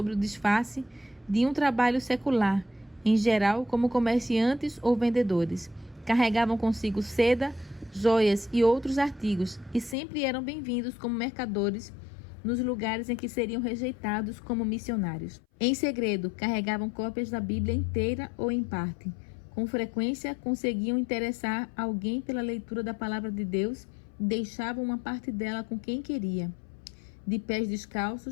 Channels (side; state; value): right; drops out; at 10.0 s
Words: o disfarce de um trabalho secular, em geral como comerciantes ou vendedores. Carregavam consigo seda, joias e outros artigos e sempre eram bem-vindos como mercadores nos lugares em que seriam rejeitados como missionários. Em segredo, carregavam cópias da Bíblia inteira ou em parte. Com frequência, conseguiam interessar alguém pela leitura da palavra de Deus e deixavam uma parte dela com quem queria. De pés